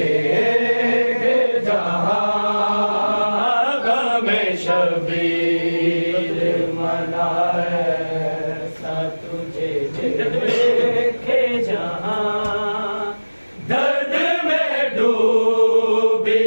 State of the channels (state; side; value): inverted; both; correlation -1.00